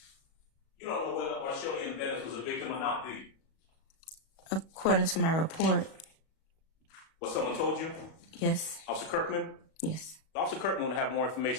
you don't know whether Arshelian Bennett was a victim or not, do you? According to my report, What someone told you? yes. Officer Kirkman? Yes. Officer Kirkman would have more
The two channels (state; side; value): late; right; 37 ms